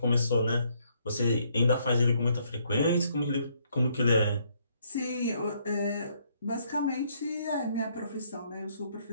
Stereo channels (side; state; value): both; inverted; correlation -0.70